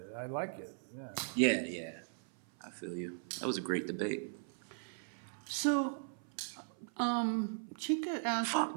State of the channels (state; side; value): silent; left; 52 dB below the other